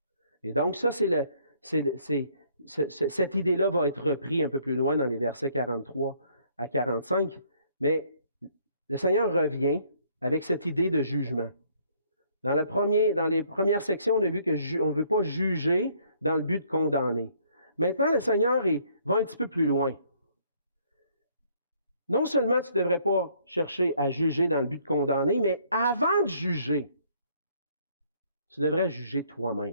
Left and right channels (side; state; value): both; inverted; correlation -0.64